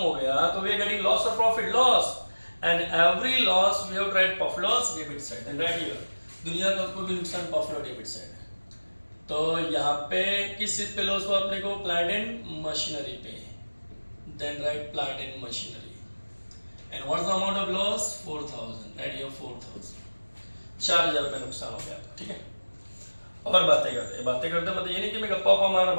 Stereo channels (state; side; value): inverted; both; correlation -1.00